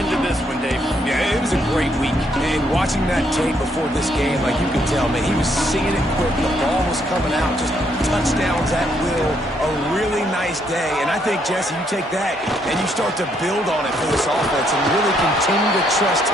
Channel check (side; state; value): both; normal; correlation 0.72